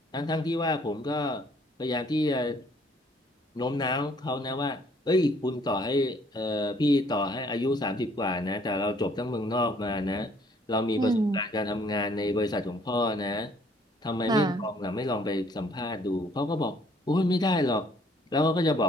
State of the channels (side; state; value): both; normal; correlation 0.62